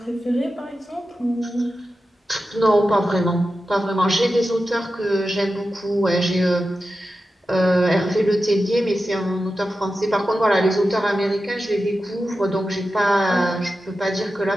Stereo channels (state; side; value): normal; both; correlation 0.92